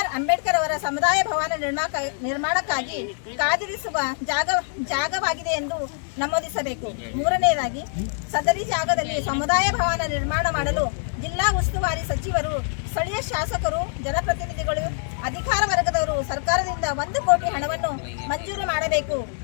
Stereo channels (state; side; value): silent; right; 62 dB below the other